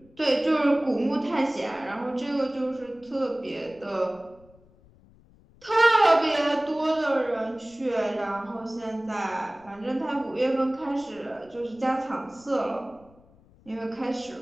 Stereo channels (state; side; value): noise; left; rumble, 27 dB below the sound